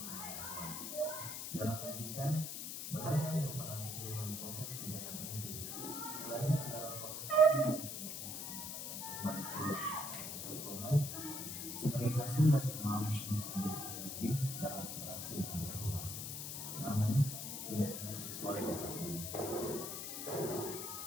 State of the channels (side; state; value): left; noise; hiss, 5 dB below the sound